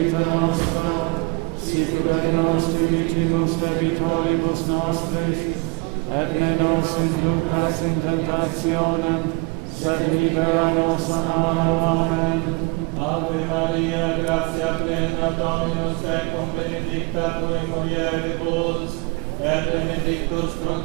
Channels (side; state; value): left; quieter; 29.1 dB